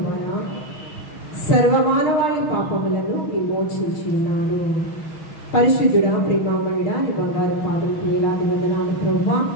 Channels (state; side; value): late; right; 6.6 ms